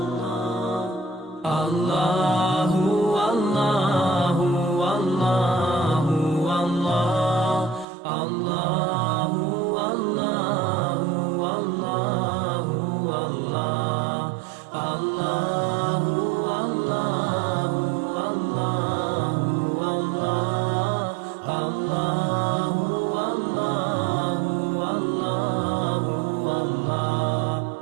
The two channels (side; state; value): left; drops out; at 7.9 s